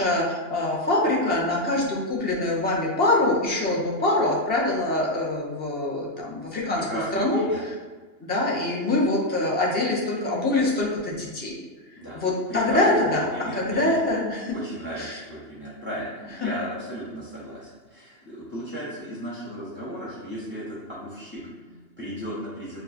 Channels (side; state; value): left; late; 2.9 ms